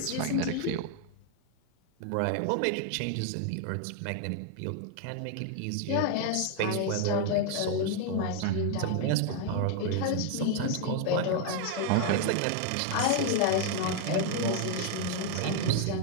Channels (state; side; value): different; both; correlation 0.00